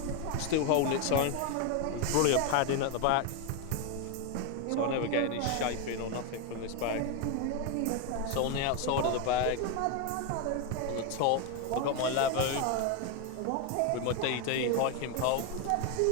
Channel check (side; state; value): both; different; correlation 0.01